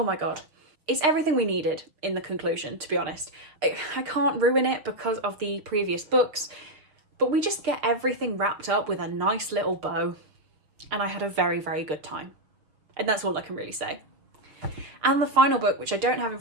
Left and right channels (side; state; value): left; late; 6.6 ms